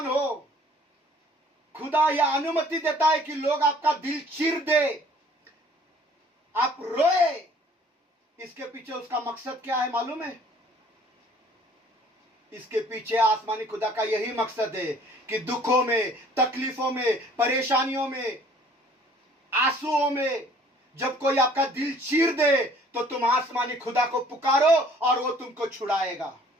हो। खुदा यह अनुमति देता है कि लोग आपका दिल चीर दे, आप रोए। इसके पीछे उसका मकसद क्या है मालूम है? इसके पीछे आसमानी खुदा का यही मकसद है कि दुखों में, तकलीफों में, परेशानियों में, आंसुओं में जब कोई आपका दिल चीर दे तो तुम आसमानी खुदा को पुकारो और वो तुमको छुड़ाएगा।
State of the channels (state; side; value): normal; both; correlation 0.55